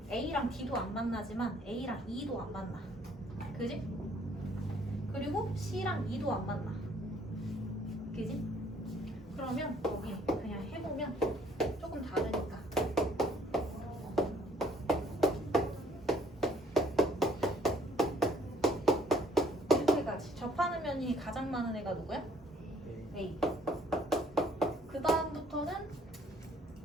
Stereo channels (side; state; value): both; normal; correlation 0.61